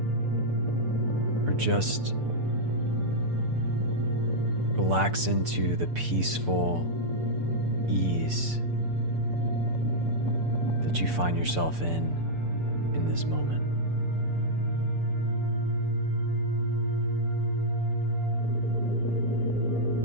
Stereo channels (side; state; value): left; late; 6.8 ms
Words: or just relax into the peaceful ease that you find yourself in this moment.